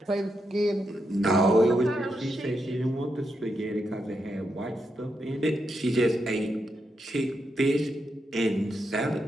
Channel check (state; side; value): normal; both; correlation 0.83